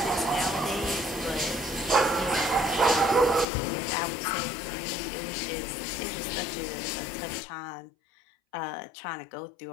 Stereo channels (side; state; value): right; drops out; at 3.5 s